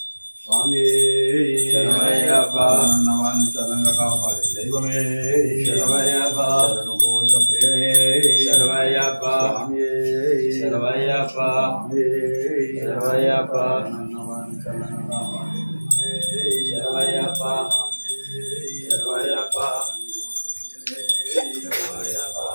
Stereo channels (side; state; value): both; inverted; correlation -1.00